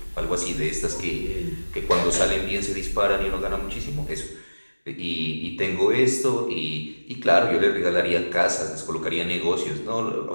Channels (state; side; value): inverted; both; correlation -1.00